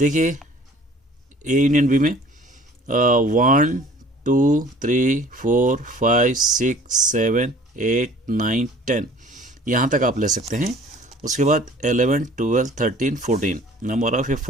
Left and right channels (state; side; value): normal; both; correlation 0.50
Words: ए यूनियन बी में 1 2 3 4 5 6 7 8 9 10 यहाँ तक आप ले सकते हैं। उसके बाद 11 12 13 14, नंबर ऑफ ए